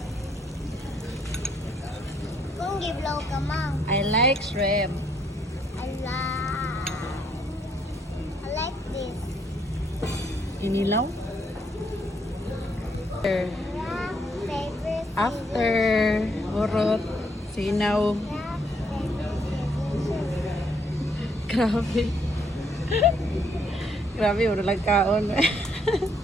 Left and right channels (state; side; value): normal; both; correlation 0.70